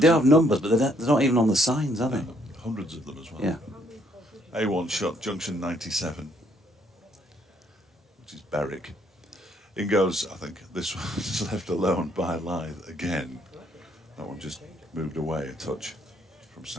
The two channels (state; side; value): normal; both; correlation 0.69